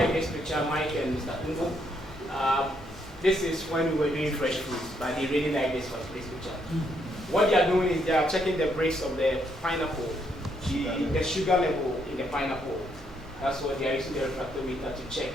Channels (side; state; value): both; normal; correlation 0.74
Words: this picture, Mike and Mr. Ungo. This is when we were doing fresh fruits, but they really like this picture. What they are doing is they are checking the breaks of the pineapple, the sugar level in the pineapple. That's what they are using the refractometer to check.